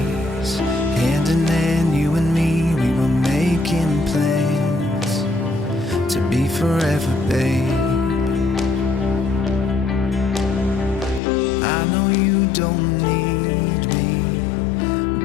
hand in hand, you and me, we were making plans to be forever, babe. I know you don't need me,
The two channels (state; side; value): drops out; right; at 11.2 s